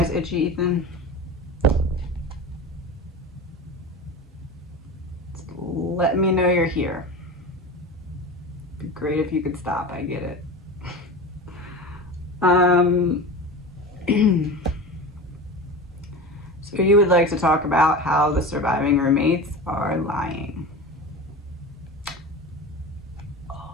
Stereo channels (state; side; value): normal; both; correlation 0.30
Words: itchy, Ethan? Let me know you're here. It'd be great if you could stop. I get it. So you would like to talk about how the surviving roommates are lying.